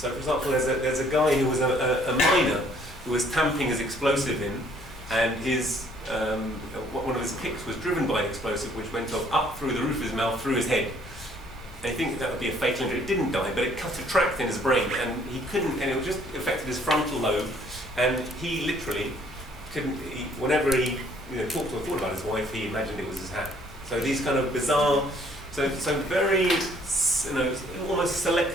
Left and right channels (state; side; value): normal; both; correlation 0.61